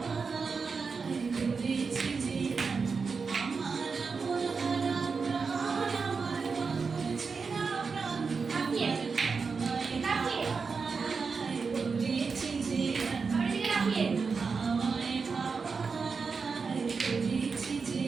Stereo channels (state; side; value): quieter; left; 5.0 dB